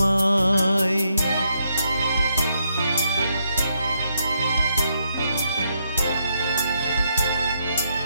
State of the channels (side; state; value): both; inverted; correlation -0.77